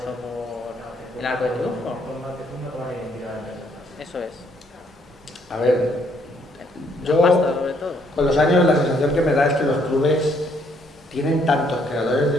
por el arco de triunfo. Eso es. A ver, yo con los años la sensación que me da es que los clubes tienen tantos creadores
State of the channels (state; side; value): normal; both; correlation 0.68